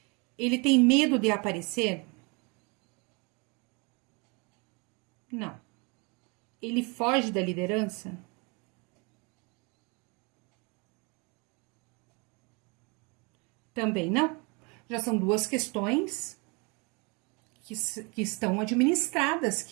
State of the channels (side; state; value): left; quieter; 30.4 dB